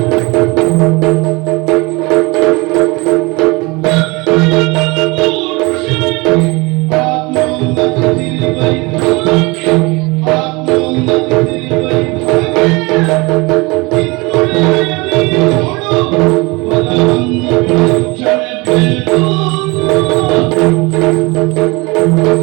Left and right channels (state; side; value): quieter; left; 25.4 dB